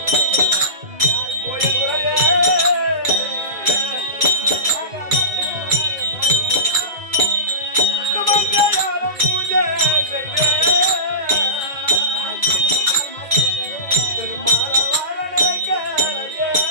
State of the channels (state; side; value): late; left; 2.3 ms